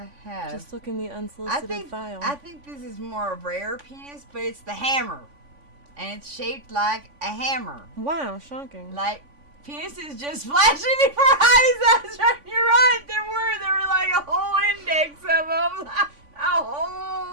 have. Just look in the unsolicited file. I think this is more a rare penis, but it's the hammer. And it's shaped like a hammer. Wow, shocking. Like, penises just flashing before eyes. That's right. You're right. There were like a whole index of them. A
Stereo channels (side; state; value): left; late; 3.5 ms